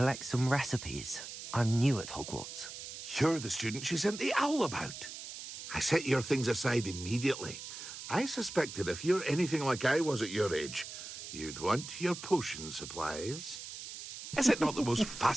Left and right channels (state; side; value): noise; right; hiss, 10 dB below the sound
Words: some recipes. I'm new at Hogwarts. You're the student she sent the owl about. I set your things aside immediately. I suspected if you're anything like I was at your age, you'd want your potion supplies. Is it not the most